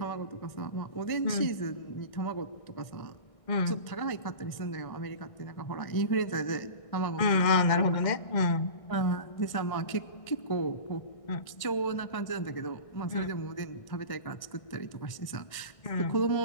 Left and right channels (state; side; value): late; right; 1.6 ms